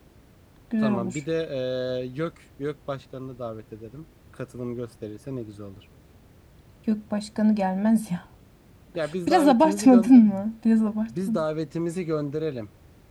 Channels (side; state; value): both; identical; correlation 1.00